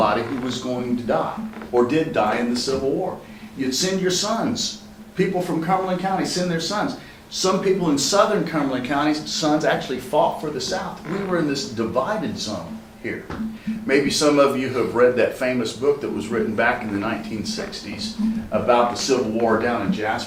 who was going to die or did die in the Civil War. You'd send your sons. People from Cumberland County send their sons. Some people in southern Cumberland County's sons actually fought for the South. We were in this divided zone here. Maybe some of you have read that famous book that was written back in the 1960s about the Civil War down in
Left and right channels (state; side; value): identical; both; correlation 1.00